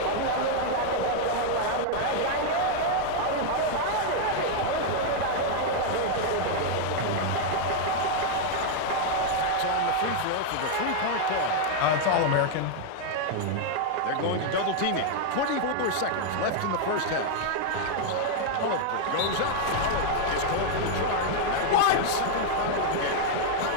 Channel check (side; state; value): both; different; correlation 0.00